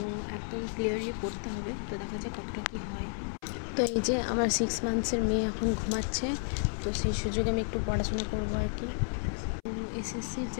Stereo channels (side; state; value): right; silent; 57 dB below the other